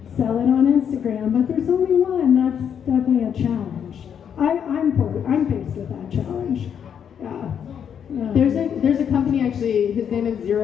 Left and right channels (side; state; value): right; quieter; 8.2 dB